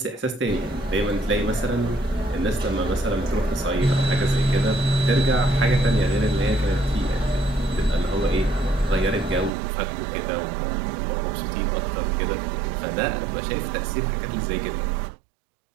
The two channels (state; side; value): drops out; left; at 9.5 s